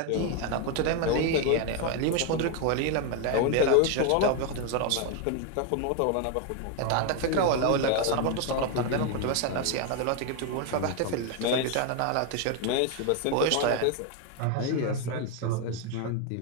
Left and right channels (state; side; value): different; both; correlation 0.01